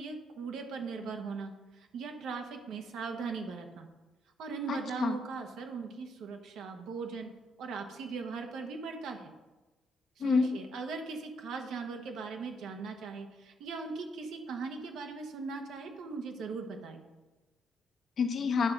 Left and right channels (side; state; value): both; normal; correlation 0.73